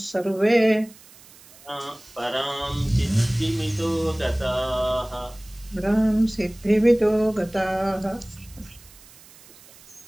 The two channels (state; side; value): noise; right; hiss, 23 dB below the sound